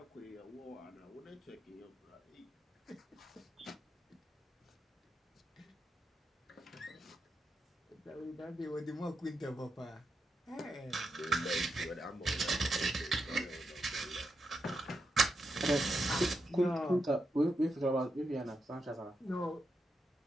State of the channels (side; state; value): both; normal; correlation 0.85